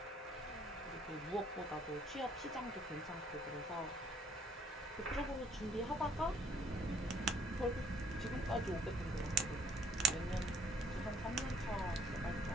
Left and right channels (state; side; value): normal; both; correlation 0.61